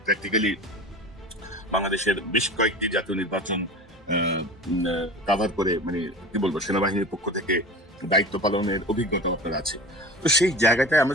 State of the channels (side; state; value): both; normal; correlation 0.35